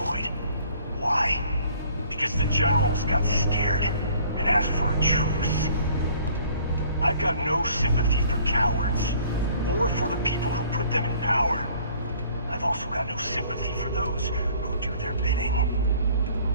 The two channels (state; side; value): inverted; both; correlation -0.55